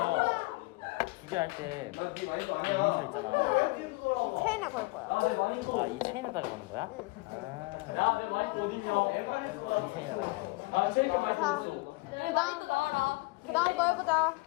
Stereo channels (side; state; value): right; quieter; 25.2 dB